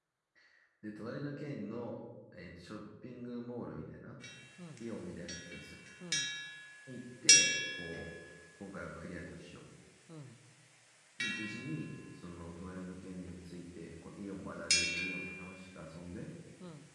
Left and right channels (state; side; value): identical; both; correlation 1.00